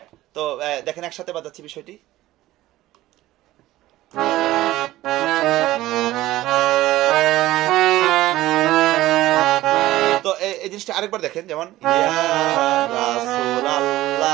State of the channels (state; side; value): quieter; left; 16.0 dB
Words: তো দেখেন একসাথে বাজাচ্ছি বিষয়টি। তো এই জিনিসটা আরেকবার দেখেন, যেমন ইয়া